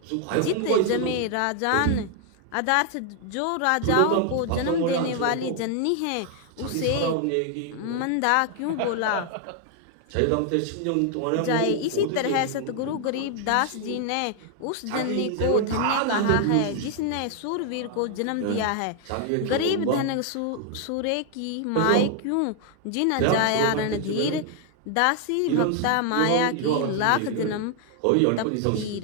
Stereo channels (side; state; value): both; different; correlation 0.00